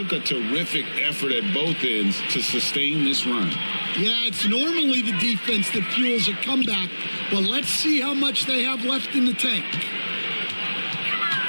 a terrific effort at both ends to sustain this run. Yeah, it's normally the defense that fuels a comeback, but let's see how much they have left in the tank.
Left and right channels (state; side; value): inverted; both; correlation -1.00